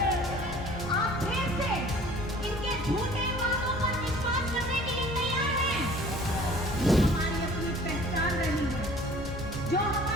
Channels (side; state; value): both; normal; correlation 0.50